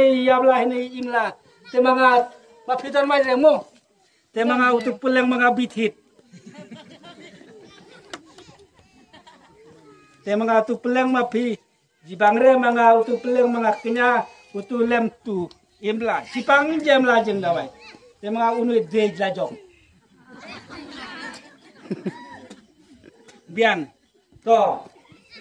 yabla hene imla te mga mapitan mai remo te mga utu pulang mga bithit Te mga tu peleng mapi. Jibangre mga utu peleng mga kenya utu lem tu imla. Sipang jem la jeng dawai. Te mga unu dej la jong. Bian. To.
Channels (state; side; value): identical; both; correlation 1.00